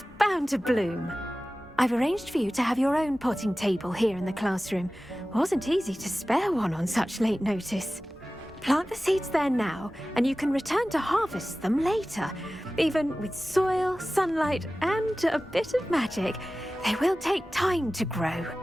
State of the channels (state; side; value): normal; both; correlation 0.96